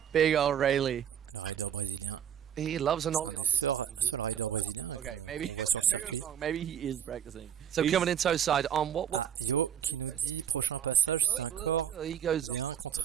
big old Rayleigh. He loves an ollie. Okay, maybe maybe he is practicing. So he's coming in toe side on what? He goes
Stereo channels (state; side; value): quieter; left; 9.1 dB